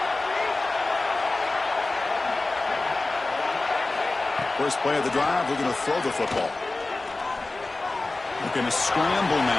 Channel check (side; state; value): right; quieter; 3.2 dB